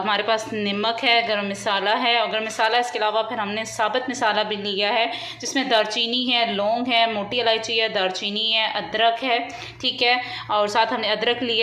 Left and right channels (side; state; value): both; identical; correlation 1.00